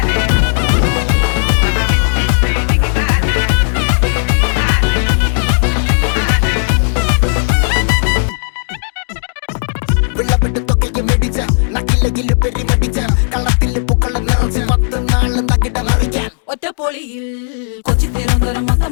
വെള്ളപ്പെട്ട് തൊക്കയ്ക്ക് മെടിച്ച നക്കില്ലകില് പെരിമടിച്ച കള്ളത്തില് പൂക്കള നിറച്ച് 10 നാള് തകിട മറിക്കാൻ ഒറ്റപ്പൊളിയിൽ കൊച്ചി തിരുവനന്തപുരം മൊത്തം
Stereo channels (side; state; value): right; silent; digital silence